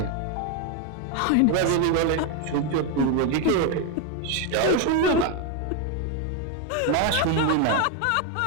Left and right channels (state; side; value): different; both; correlation 0.01